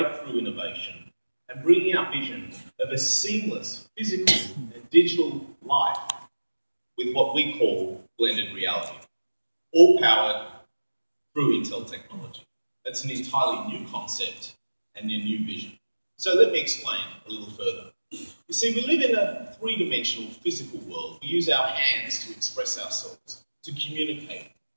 innovation and bringing our vision of a seamless physical and digital life with what we call blended reality, all powered through Intel technology. That's an entirely new concept and a new vision. So let me explain a little further. You see, we live in a three-dimensional physical world. We use our hands to express ourselves, to communicate,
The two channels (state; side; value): inverted; both; correlation -1.00